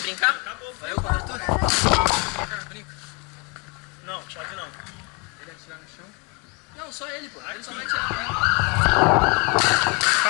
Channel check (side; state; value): right; quieter; 31.9 dB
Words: brincar? Acabou, vai eu contra tu? Brinca. Não, chave não. Ele atirar no chão? Não, só ele, pô. Ele só vai atirar.